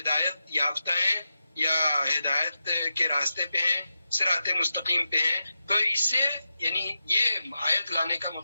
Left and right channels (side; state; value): both; inverted; correlation -0.89